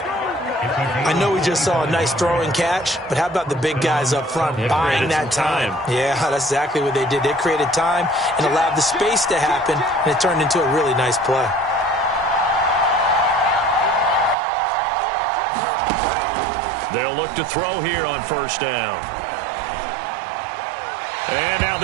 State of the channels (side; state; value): left; drops out; at 14.4 s